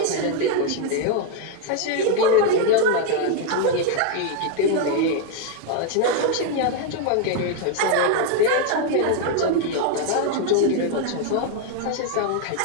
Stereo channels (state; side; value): different; both; correlation 0.01